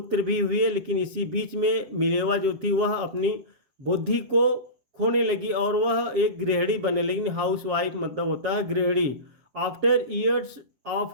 भी हुए, लेकिन इसी बीच में मिलेवा जो थी वह अपनी बुद्धि को खोने लगी और वह एक गृहिणी बनने लगी। हाउस वाइफ मतलब होता है गृहिणी। After years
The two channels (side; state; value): left; late; 7.4 ms